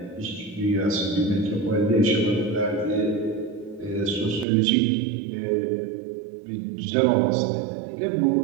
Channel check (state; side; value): drops out; left; at 4.5 s